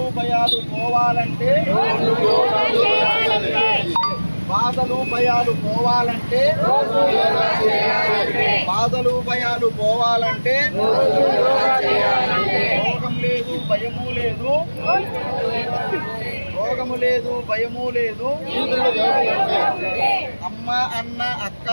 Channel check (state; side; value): inverted; both; correlation -1.00